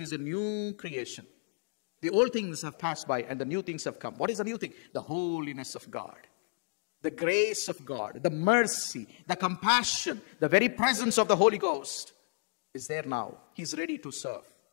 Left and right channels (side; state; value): right; silent; digital silence